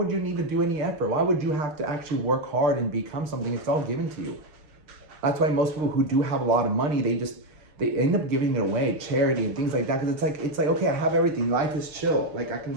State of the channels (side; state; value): left; late; 6.6 ms